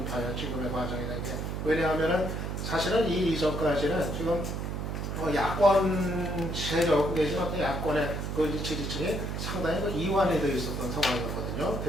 봐요. 지금의 과정이라는 게. 왜냐하면은 사실은 이 이전까지는 지금 야권 세력 내지는 어떤 야권의 그 지지층이 상당히 이완이 되어 있었던 상황이었거든요.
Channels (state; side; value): noise; right; hum, 3 dB below the sound